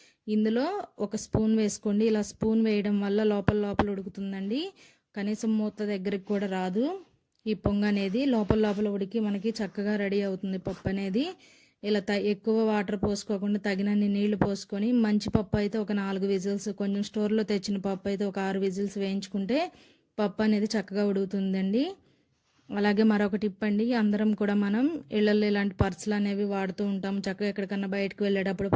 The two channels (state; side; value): identical; both; correlation 1.00